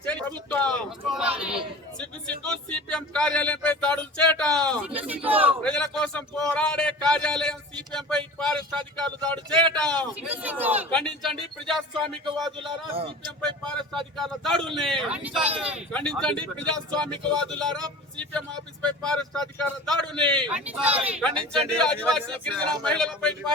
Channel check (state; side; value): normal; both; correlation 0.38